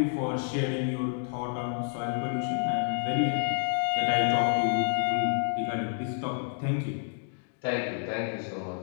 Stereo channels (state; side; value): silent; right; 58 dB below the other